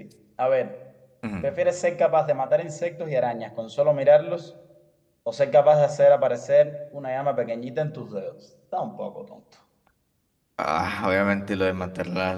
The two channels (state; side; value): identical; both; correlation 1.00